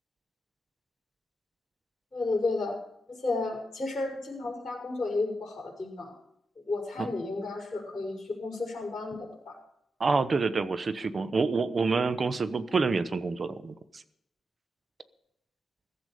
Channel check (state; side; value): normal; both; correlation 0.87